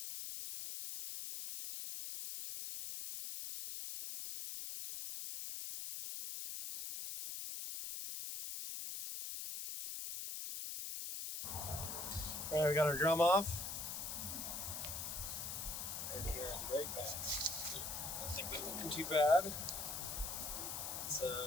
Alright, we got our drum off. And here are the brake pads. I don't think they're looking too bad. Let's do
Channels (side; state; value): left; noise; hiss, 4 dB below the sound